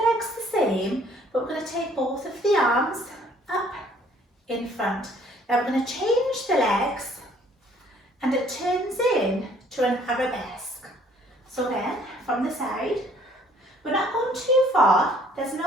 the same, but we're going to take both of the arms up in front. Now we're going to change the legs and it turns in to an arabesque. So again, from the side, we're not going too far, there's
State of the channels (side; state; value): both; normal; correlation 0.60